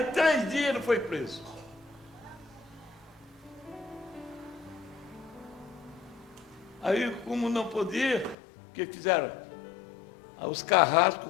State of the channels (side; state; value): right; drops out; at 8.3 s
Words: 3 dias ele foi preso. Aí, como não podia, o que fizeram? Os carrascos,